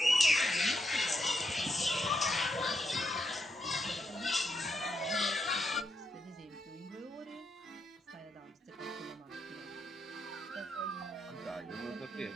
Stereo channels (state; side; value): normal; both; correlation 0.81